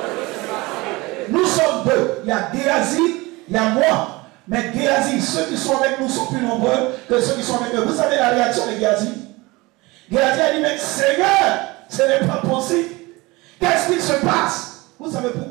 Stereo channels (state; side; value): quieter; left; 22.7 dB